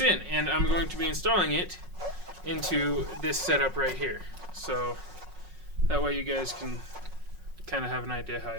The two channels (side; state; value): left; late; 5.4 ms